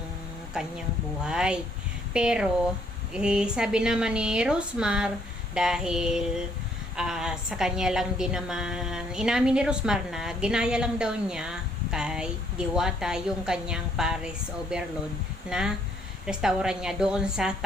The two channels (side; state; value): both; normal; correlation 0.67